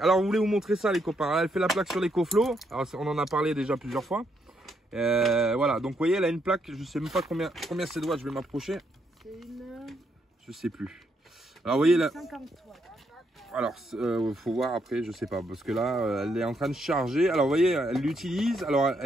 on voulait vous montrer ça, les copains. Elle fait la plaque sur l'écoflow. Alors, on en a parlé déjà plusieurs fois. Voilà, donc vous voyez, elle a une plaque. Je sais même pas combien c'est de watts. Je vais m'approcher. C'est une... Je sais plus. Alors, vous voyez là. 50 watts. Alors, faut voir après, je sais pas, parce que là, elle est en train de charger. Alors, vous voyez, elle l'utilise. Alors,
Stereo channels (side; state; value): both; normal; correlation 0.76